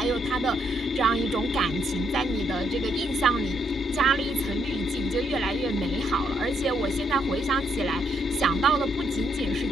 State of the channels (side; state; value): both; normal; correlation 0.75